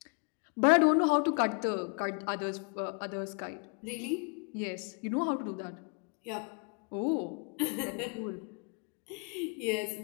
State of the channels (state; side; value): quieter; right; 37.0 dB